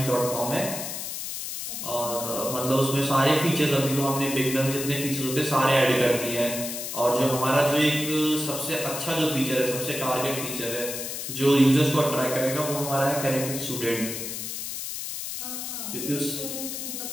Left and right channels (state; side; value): noise; left; hiss, 6 dB below the sound